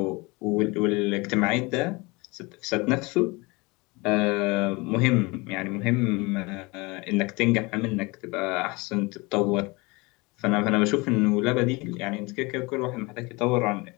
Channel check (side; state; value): right; quieter; 25.5 dB